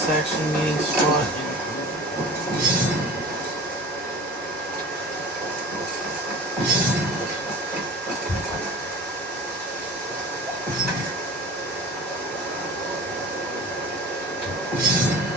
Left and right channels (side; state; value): both; normal; correlation 0.38